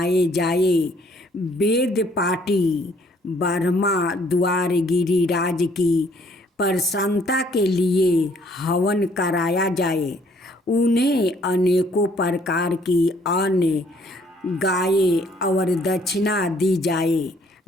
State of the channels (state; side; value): normal; both; correlation 0.63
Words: जाए। वेद पाठी ब्रह्मा द्वार गिरिराज की प्रसन्नता के लिए हवन कराया जाए। उन्हें अनेकों प्रकार की अन्न गायें और दक्षिणा दी जाए।